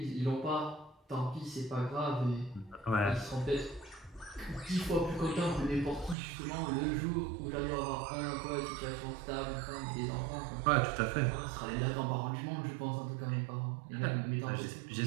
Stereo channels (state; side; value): drops out; left; at 6.2 s